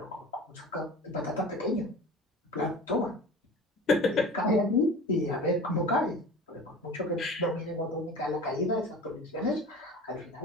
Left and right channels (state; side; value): normal; both; correlation 0.37